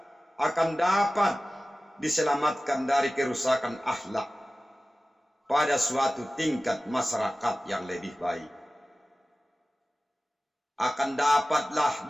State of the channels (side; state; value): both; normal; correlation 0.97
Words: akan dapat diselamatkan dari kerusakan akhlak pada suatu tingkat masyarakat yang lebih baik. Akan dapatlah